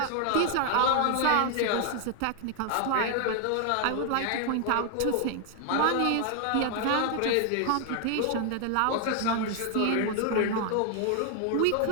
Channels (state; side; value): different; both; correlation 0.00